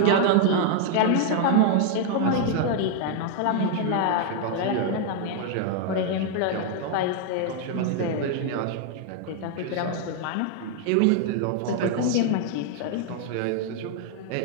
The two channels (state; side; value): different; both; correlation 0.00